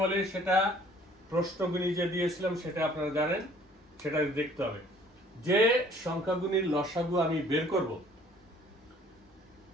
বলে সেটা প্রশ্নগুলি যে দিয়েছিলাম, সেটা আপনারা জানেন, সেটা দেখতে হবে। যে সংখ্যাগুলির লসাগু আমি বের করব,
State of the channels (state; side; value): normal; both; correlation 0.56